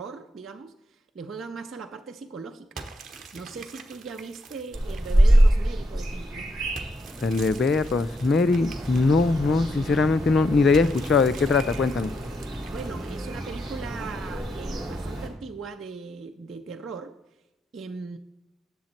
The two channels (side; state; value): both; normal; correlation 0.80